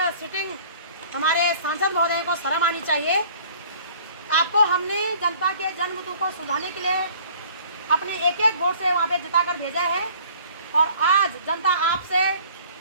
सिटिंग हमारे सांसद महोदय को शर्म आनी चाहिए। आपको हमने जनता के जन्मतु को सुलझाने के लिए अपने एक एक वोट से वहाँ पे जिताकर भेजा है, और आज जनता आपसे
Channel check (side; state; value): both; inverted; correlation -0.53